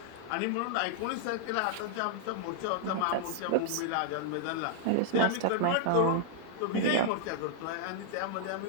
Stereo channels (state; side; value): different; both; correlation 0.00